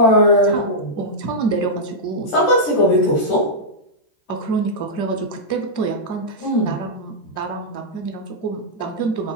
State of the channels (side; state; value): right; late; 13 ms